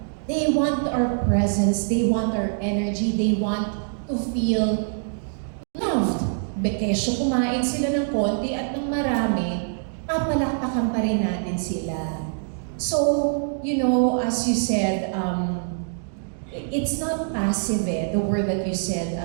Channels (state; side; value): silent; left; digital silence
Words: They want our presence, they want our energy, they want to feel loved. Bekesyo kumain sila ng konti at ng marami, papalakpakan pa rin natin sila. So, you know, as you said, it's not passive the word that you said.